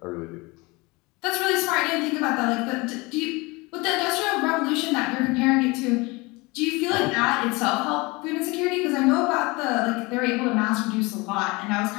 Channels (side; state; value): right; quieter; 24.7 dB